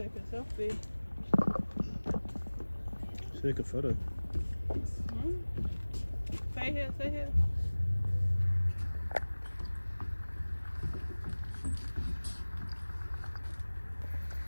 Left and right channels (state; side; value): inverted; both; correlation -1.00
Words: a selfie. Take a photo. Stay here, stay here.